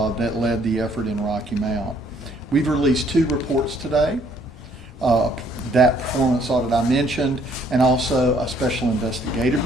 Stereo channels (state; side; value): normal; both; correlation 0.64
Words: led the effort in Rocky Mount. We've released 2 reports today. That performance audit I mentioned, and also a special investigative